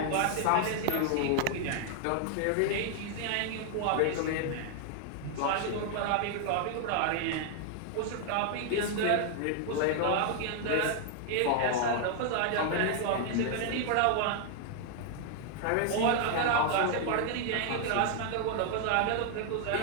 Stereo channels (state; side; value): different; both; correlation 0.00